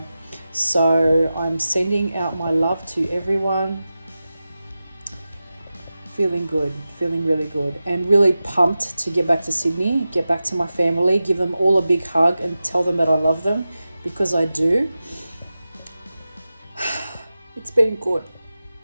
So I'm sending out my love to everyone. Feeling good, feeling really good, and really pumped to get back to Sydney, get back to my family, give them all a big hug and tell them that I love them, because I do. It's been good.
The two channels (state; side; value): inverted; both; correlation -0.94